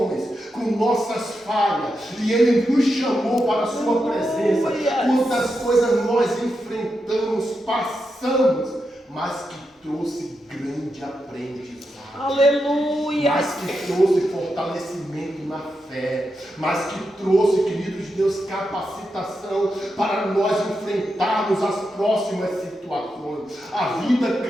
com nossas falhas, e Ele nos chamou para a sua presença. Quantas coisas nós enfrentamos, passamos, mas que trouxe grande aprendizado. Aleluia. Mas que trouxe fortalecimento na fé, mas que trouxe, queridos de Deus, capacitação para nós enfrentarmos as próximas situações. A vida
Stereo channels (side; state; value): both; normal; correlation 0.86